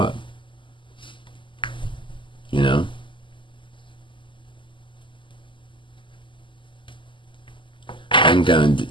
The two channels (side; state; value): right; late; 0.24 ms